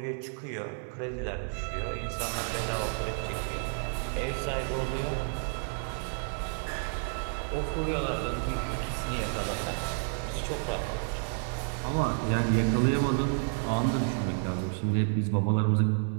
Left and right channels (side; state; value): left; silent; 57 dB below the other